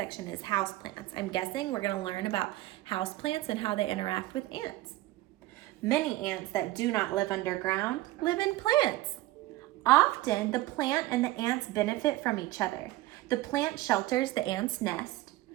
is houseplants. I'm guessing we're going to learn about houseplants and how they interact with ants. Many ants that do not live underground live in plants. Often, the plant and the ants benefit from each other. The plant shelters the ant's nest,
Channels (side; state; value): left; quieter; 16.9 dB